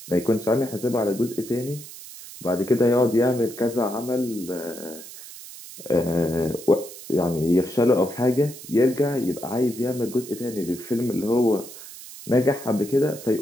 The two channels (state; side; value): noise; right; hiss, 15 dB below the sound